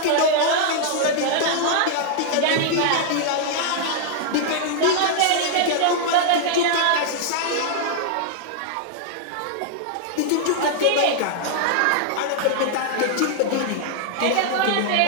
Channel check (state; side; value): different; both; correlation -0.01